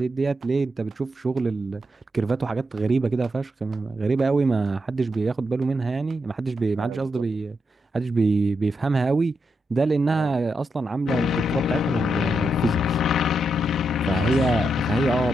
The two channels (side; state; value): both; normal; correlation 0.83